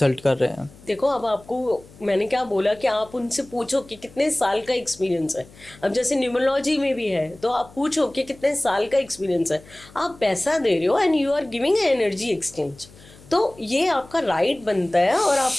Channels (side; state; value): left; noise; hum, 23 dB below the sound